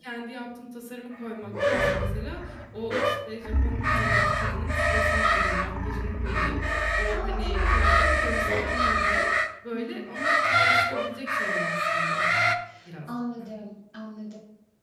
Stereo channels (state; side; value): identical; both; correlation 1.00